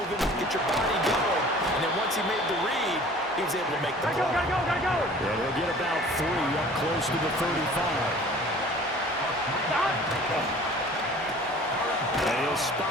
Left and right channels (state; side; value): normal; both; correlation 0.47